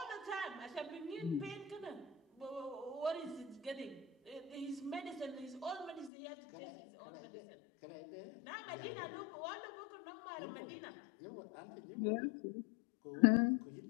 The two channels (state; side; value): drops out; right; at 6.1 s